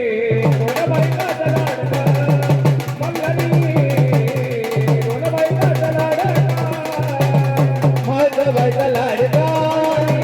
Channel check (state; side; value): identical; both; correlation 1.00